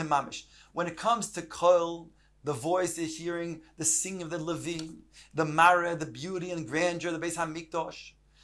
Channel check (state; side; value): identical; both; correlation 1.00